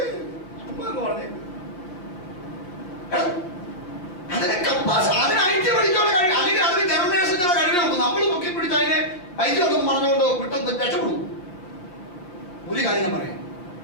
പിന്നെ പറഞ്ഞേ അതിനെ അതിനായിട്ട് പഠിക്കാനുള്ള കഴിവ്, അല്ലെങ്കിൽ അതിന് ജനറേഷനുള്ള കഴിവ് നോക്കും. നമ്മൾ പൊക്കി പിടിച്ച് അതിനെ ഐക്യൊന്നും പറഞ്ഞുകൊണ്ട് വിട്ടൊന്നും രക്ഷപ്പെടും. ഒരു കാര്യം ഞാൻ പറയാം,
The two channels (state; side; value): late; right; 5.6 ms